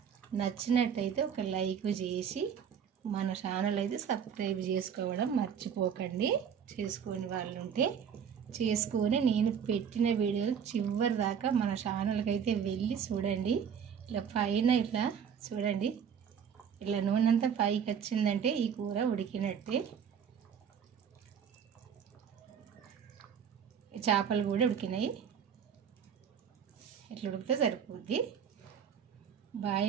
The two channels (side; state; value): left; quieter; 7.7 dB